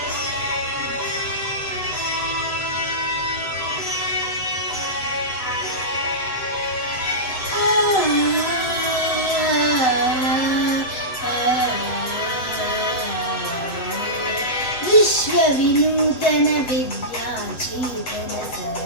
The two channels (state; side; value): late; right; 7.8 ms